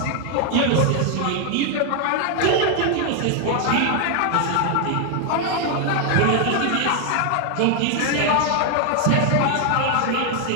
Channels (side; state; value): both; different; correlation 0.00